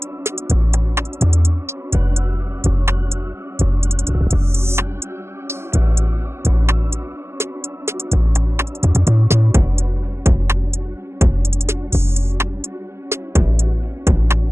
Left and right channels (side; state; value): left; late; 0.12 ms